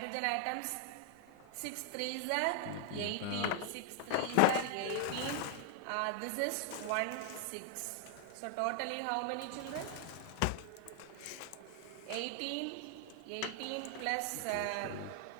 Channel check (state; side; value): different; both; correlation 0.00